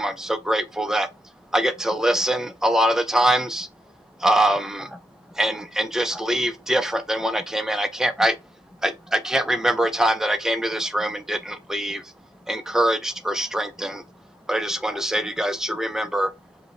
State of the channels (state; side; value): normal; both; correlation 0.84